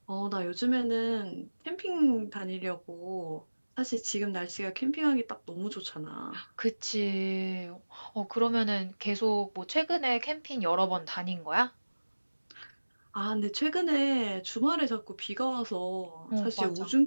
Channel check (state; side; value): inverted; both; correlation -1.00